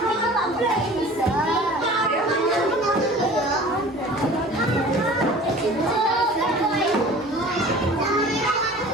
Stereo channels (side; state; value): both; normal; correlation 0.44